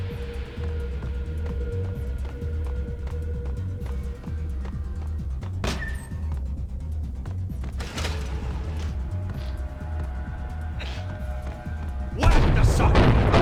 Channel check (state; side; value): identical; both; correlation 1.00